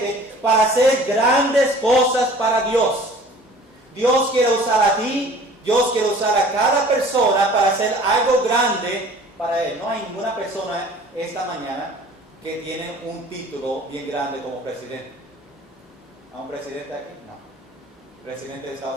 para hacer grandes cosas para Dios. Dios quiere usar a ti, Dios quiere usar a cada persona para hacer algo grande para Él. No hay ninguna persona esta mañana que tiene un título bien grande como presidente. ¿Hay un presidente aquí? No. ¿Presidente de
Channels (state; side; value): normal; both; correlation 0.48